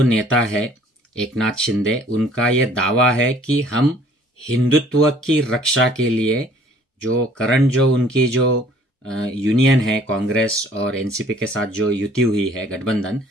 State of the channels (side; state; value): both; normal; correlation 0.56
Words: नेता है एकनाथ शिंदे, उनका ये दावा है कि हम हिंदुत्व की रक्षा के लिए जो करंट जो उनकी जो यूनियन है कांग्रेस और एनसीपी के साथ जो युति हुई है गठबंधन,